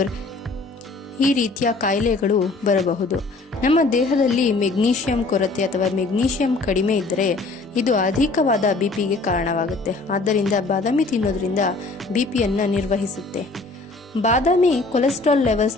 ಈ ರೀತಿಯ ಕಾಯಿಲೆಗಳು ಬರಬಹುದು. ನಮ್ಮ ದೇಹದಲ್ಲಿ ಮೆಗ್ನೀಷಿಯಂ ಕೊರತೆ ಅಥವಾ ಮೆಗ್ನೀಷಿಯಂ ಕಡಿಮೆ ಇದ್ದರೆ ಇದು ಅಧಿಕವಾದ ಬಿಪಿಗೆ ಕಾರಣವಾಗುತ್ತೆ. ಆದ್ದರಿಂದ ಬಾದಾಮಿ ತಿನ್ನೋದ್ರಿಂದ ಬಿಪಿಯನ್ನ ನಿರ್ವಹಿಸುತ್ತೆ. ಬಾದಾಮಿ ಕೊಲೆಸ್ಟ್ರಾಲ್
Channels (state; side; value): quieter; right; 3.6 dB